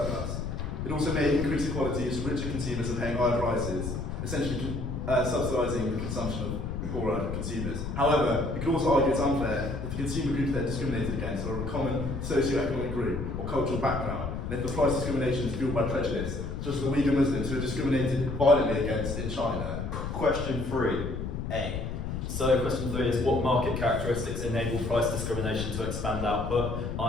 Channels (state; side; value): noise; left; rumble, 4 dB below the sound